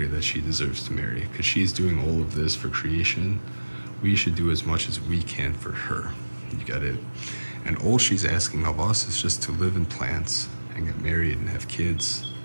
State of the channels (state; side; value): inverted; both; correlation -1.00